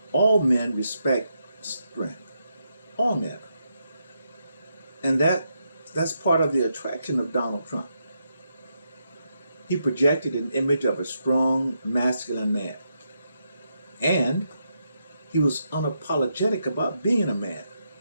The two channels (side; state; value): both; inverted; correlation -0.82